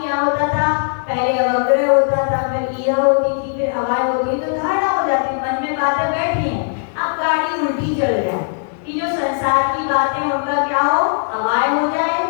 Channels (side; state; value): right; silent; 65 dB below the other